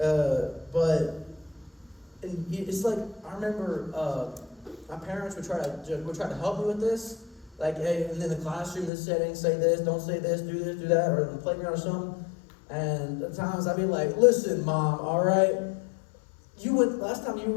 But it's like, I remember my parents would try to help me with this. Like, hey, and in the classroom, this setting, say this, don't say this, do that, or in the playground or something. And at times I'd be like, listen, Mom, all right? Last time you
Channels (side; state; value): right; drops out; at 8.9 s